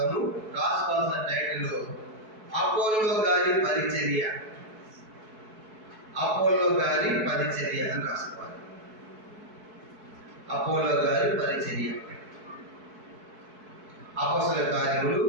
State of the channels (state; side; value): late; left; 4.7 ms